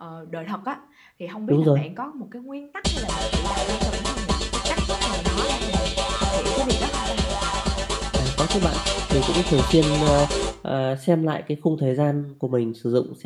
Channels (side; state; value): both; identical; correlation 1.00